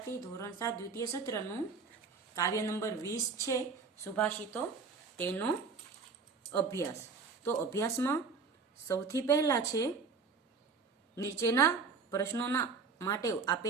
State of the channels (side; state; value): left; quieter; 4.9 dB